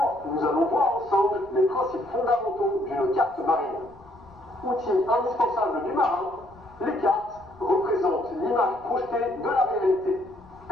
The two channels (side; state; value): left; noise; rumble, 25 dB below the sound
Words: nous allons voir ensemble les principes fondamentaux d'une carte marine. Outil indispensable du marin, les cartes représentent l'image projetée de la réalité.